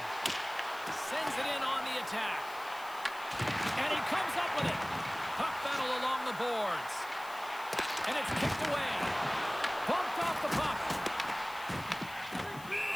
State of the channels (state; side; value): noise; left; hiss, 18 dB below the sound